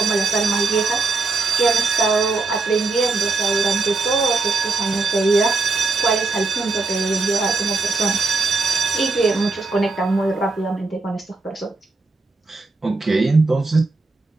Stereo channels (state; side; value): quieter; left; 3.7 dB